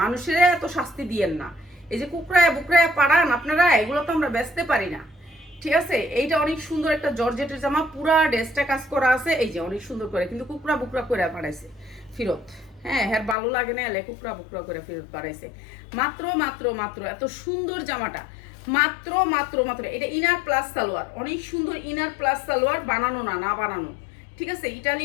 মানুষের এত শাস্তি দিয়েন না। এই যে কুকরায় বুকরায় পাড়ান আপনারা, এগুলো তো আমরা বেচতে পারি না, ঠিক আছে। এইটা অনেক সুন্দর একটা জর্জেটের জামা, পুরা ড্রেসটা কাজ করা আছে, এই যে অনেক সুন্দর করে, কিন্তু কুকরা বুকরা করে পাঠাইছে ফেরত। হ্যাঁ, ভালো লাগে না, এলে কুকরা বুকরা করে ফেরত পাঠাইছে। মাত্র মাত্র মাত্র এত সুন্দর জামাটা, মাত্র মাত্র মাত্র। এটা ইনার প্লাস সালোয়ার, অনেক সুন্দর ইনার প্লাস সালোয়ার, বানানো না বানানো, ঠিক আছে।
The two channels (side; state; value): right; drops out; at 13.4 s